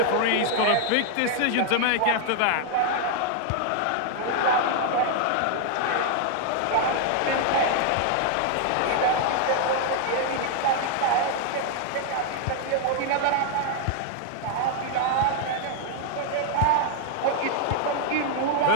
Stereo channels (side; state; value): both; different; correlation 0.00